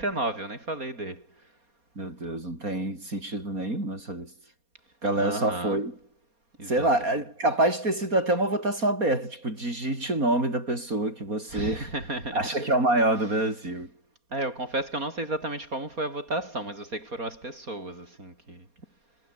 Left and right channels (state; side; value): late; left; 4.2 ms